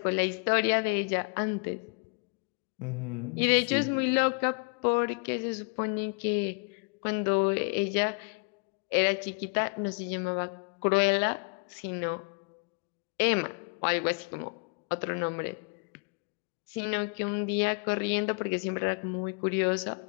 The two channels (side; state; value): right; quieter; 35.2 dB